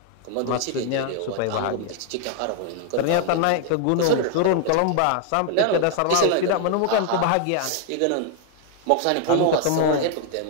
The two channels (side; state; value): both; different; correlation 0.00